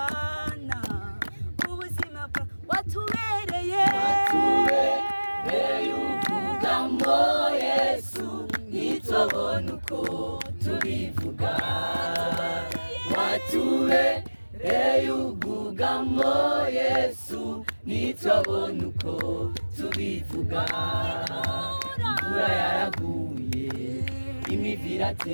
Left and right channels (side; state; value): both; inverted; correlation -1.00